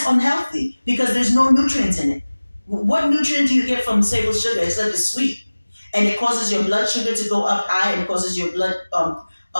unhealthy because there's no nutrients in it. What nutrient do you get from table sugar? It's that it's sweet, and it causes your blood sugar to go up high, and it causes your blood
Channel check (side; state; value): both; inverted; correlation -1.00